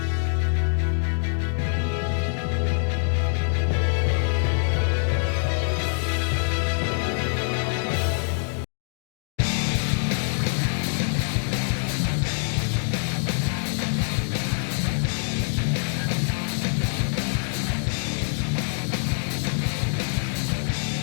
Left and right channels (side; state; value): right; silent; digital silence